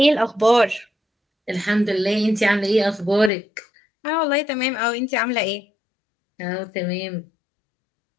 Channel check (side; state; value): right; drops out; at 3.3 s